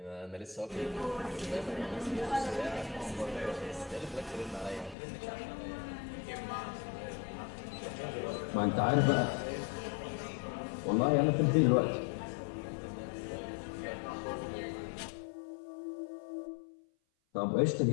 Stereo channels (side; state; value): right; drops out; at 5.0 s